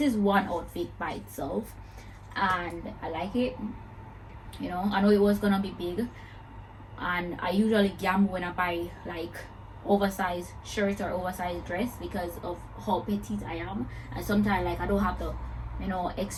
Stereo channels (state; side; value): identical; both; correlation 1.00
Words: is one outfit by itself, and I like it, you know. I know it was gonna be big, and I usually gamble when I buy like oversized shirt or oversized dress because of how petite I am, and sometimes like I don't have the, you know,